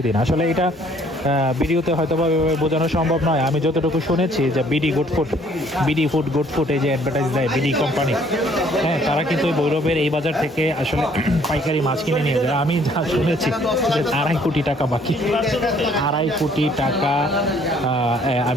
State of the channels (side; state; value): both; normal; correlation 0.61